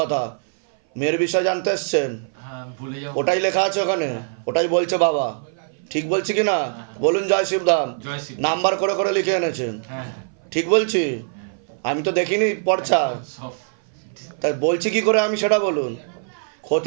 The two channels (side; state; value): left; silent; 59 dB below the other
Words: কথা। মেয়ের বিষয় জানতে এসছেন? হ্যাঁ, ভুলে যাও। ওটাই লেখা আছে ওখানে, ওটাই বলছে বাবা। ঠিক বলছি কি না বলুন? জয় শিবধাম। জয় শিব। নাম্বার করে করে লিখে এনেছেন, হ্যাঁ হ্যাঁ, ঠিক বলছি? আমি তো দেখিনি পর্চা, সব। তাই বলছি কি করে আমি সেটা বলুন।